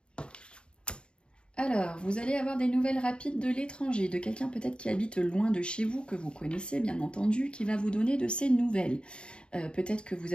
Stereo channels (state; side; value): late; right; 0.053 ms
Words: Alors, vous allez avoir des nouvelles rapides de l'étranger, de quelqu'un peut-être qui habite loin de chez vous, que vous connaissez bien entendu, qui va vous donner de ces nouvelles. Peut-être que vous